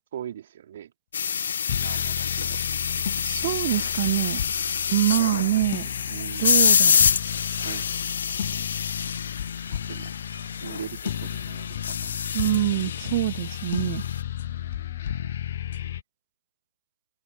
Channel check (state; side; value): inverted; both; correlation -0.60